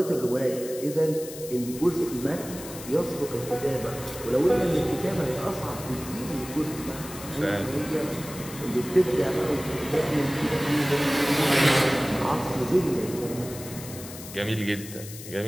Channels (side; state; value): left; noise; hiss, 13 dB below the sound